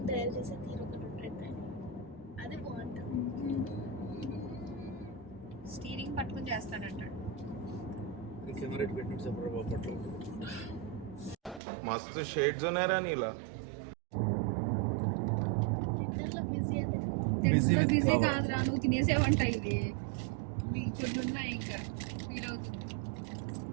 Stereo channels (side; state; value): left; drops out; at 11.6 s